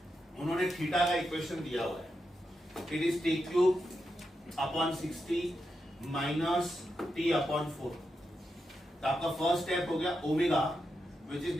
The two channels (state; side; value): normal; both; correlation 0.86